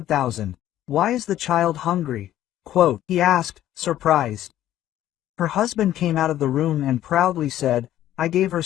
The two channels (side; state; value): right; quieter; 12.8 dB